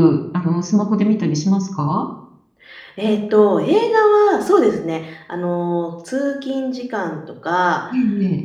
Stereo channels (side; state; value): both; identical; correlation 1.00